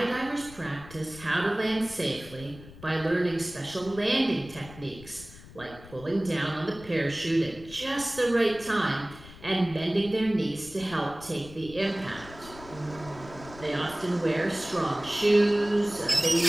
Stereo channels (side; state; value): left; noise; rumble, 18 dB below the sound